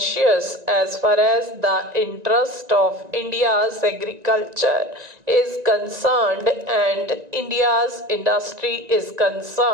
as far as the interest of India's agriculture is concerned and India's industry is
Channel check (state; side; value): late; left; 1.9 ms